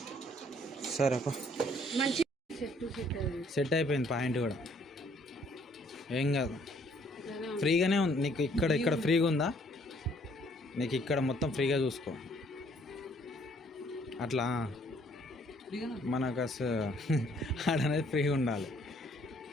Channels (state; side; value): normal; both; correlation 0.63